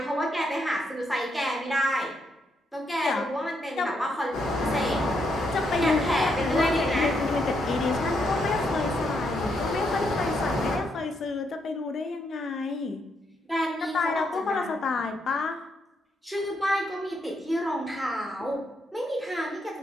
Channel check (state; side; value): normal; both; correlation 0.77